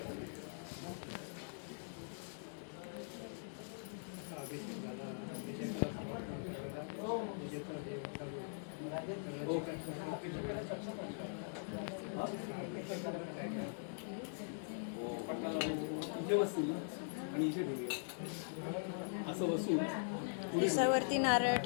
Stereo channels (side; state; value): right; silent; digital silence